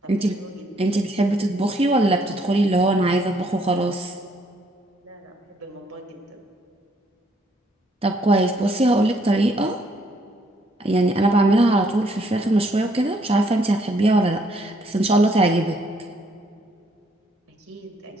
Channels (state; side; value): normal; both; correlation 0.68